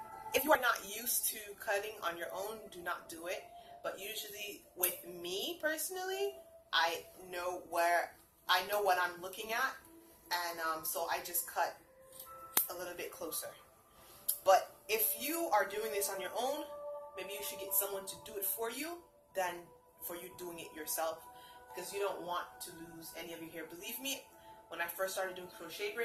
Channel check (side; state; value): both; identical; correlation 1.00